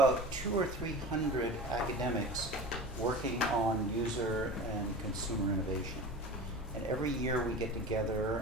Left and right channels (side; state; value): both; normal; correlation 0.33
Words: 200 or 300 academics working on user and consumer innovation. And every year we get